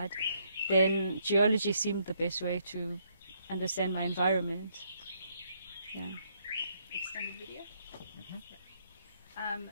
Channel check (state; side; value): inverted; both; correlation -0.72